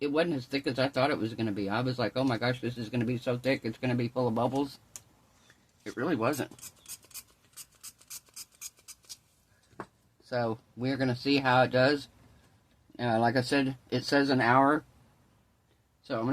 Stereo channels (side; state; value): both; identical; correlation 1.00